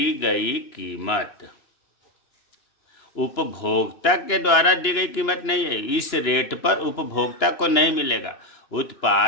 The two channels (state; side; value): late; right; 2.9 ms